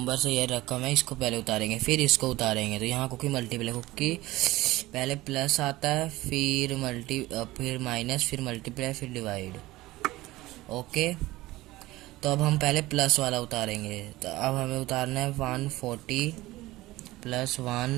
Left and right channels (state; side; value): quieter; left; 18.3 dB